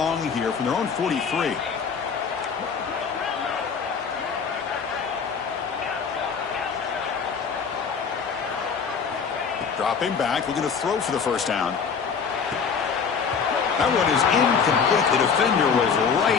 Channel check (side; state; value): right; quieter; 6.1 dB